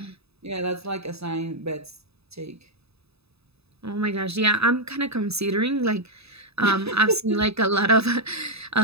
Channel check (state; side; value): late; left; 0.79 ms